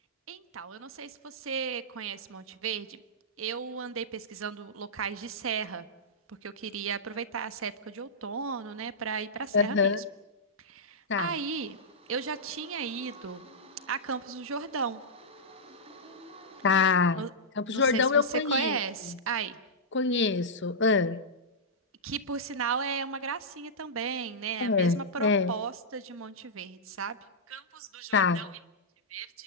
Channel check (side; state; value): both; normal; correlation -0.11